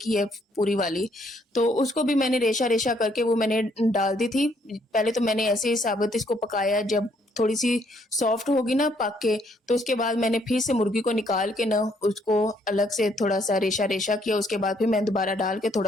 ही है पूरी वाली। तो उसको भी मैंने रेशा-रेशा करके वो मैंने डाल दी थी। पहले तो मैंने ऐसे ही साबुत इसको पकाया, जब थोड़ी-सी सॉफ्ट होगी ना पक के, तो उसके बाद मैंने फिर से मुर्गी को निकाल के ना उसको अलग से थोड़ा-सा रेशा-रेशा किया। उसके बाद फिर मैंने दोबारा डाल के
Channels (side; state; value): both; normal; correlation 0.68